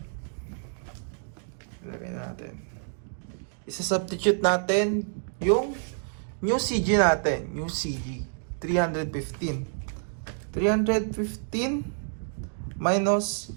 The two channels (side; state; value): left; silent; digital silence